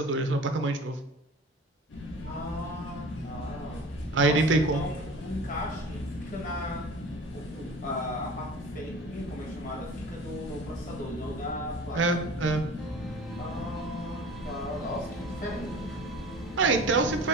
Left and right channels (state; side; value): normal; both; correlation 0.40